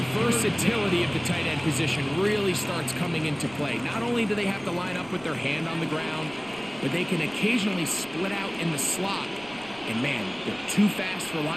versatility of the tight end position really starts coming into play. Not only do they have to line up with their hand on the ground, but they can occasionally split out in the slot. And man, they're too fast for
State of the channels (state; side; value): noise; right; rumble, 22 dB below the sound